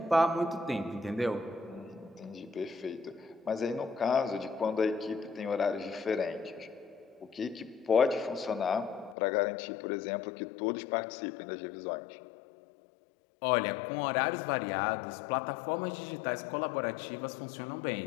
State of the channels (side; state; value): right; drops out; at 9.2 s